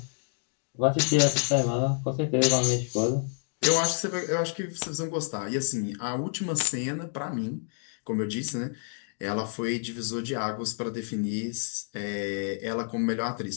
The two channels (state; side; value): silent; right; 59 dB below the other